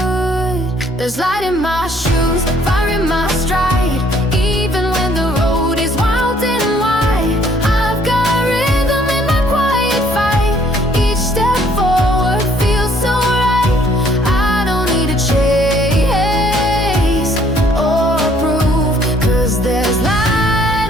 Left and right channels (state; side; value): normal; both; correlation 0.62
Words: There's light in my shoes, fire in my stride. Even when the road is wild and wide, I've got rhythm in my quiet fight. Each step forward feels so right. I don't need to chase or prove, 'cause there's